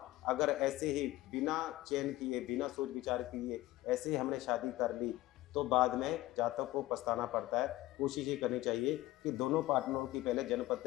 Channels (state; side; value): quieter; right; 17.0 dB